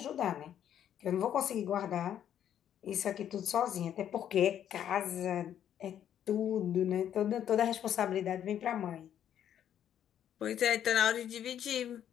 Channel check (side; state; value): right; quieter; 10.0 dB